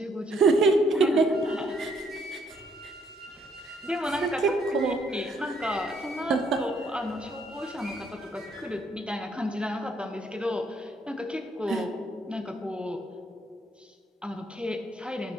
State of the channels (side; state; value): both; normal; correlation 0.69